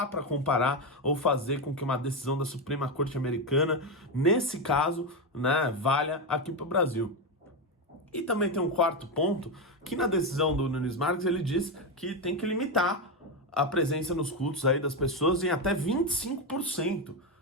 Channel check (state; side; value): normal; both; correlation 0.10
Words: para comparar ou fazer com que uma decisão da Suprema Corte Americana, nesse caso, né, valha aqui para o Brasil. E também tem um quarto ponto, que na decisão do Nunes Marques ele diz que tem que limitar a presença nos cultos aí das pessoas em até 25%